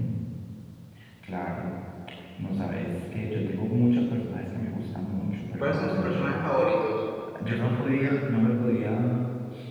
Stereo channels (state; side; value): identical; both; correlation 1.00